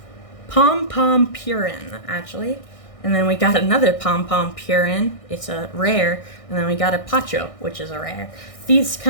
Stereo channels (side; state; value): right; late; 1.6 ms